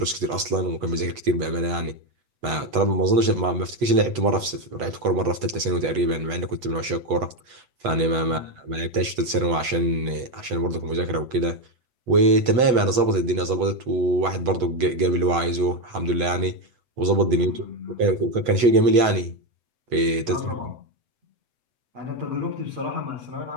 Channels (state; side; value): late; left; 8.0 ms